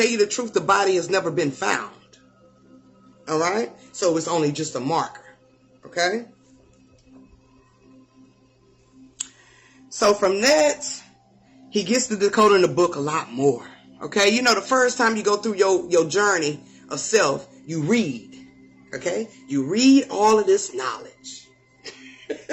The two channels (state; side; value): identical; both; correlation 1.00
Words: you the truth, the body has never been found. All right? So it's only just a marker. Okay? So from that, he gets to decoding the book a lot more. Okay? The first time you go through your journey of self, you read. Okay? You read all of this knowledge.